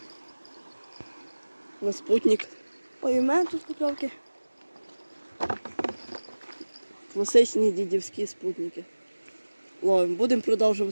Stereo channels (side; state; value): both; inverted; correlation -1.00